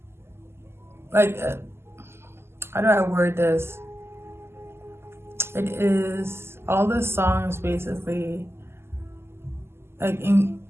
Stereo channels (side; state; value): left; late; 0.12 ms